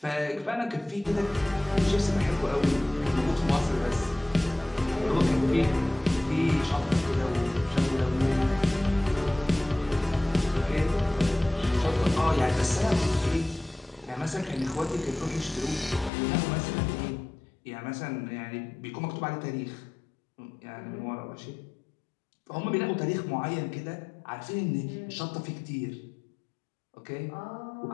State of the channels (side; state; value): right; drops out; at 16.1 s